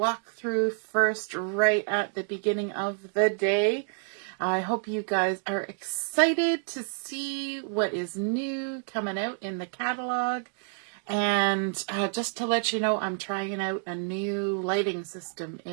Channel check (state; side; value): silent; left; 59 dB below the other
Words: first right at the beginning of the day. I hope you guys are excited to see what is new coming out in the catalog. And just to let you know, I'm trying out a new lighting system